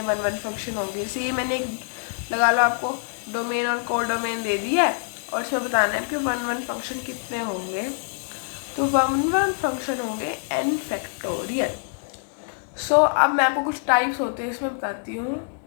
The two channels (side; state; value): right; silent; digital silence